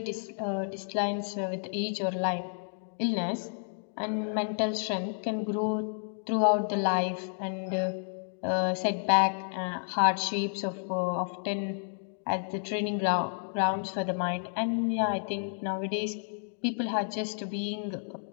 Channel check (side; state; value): right; silent; digital silence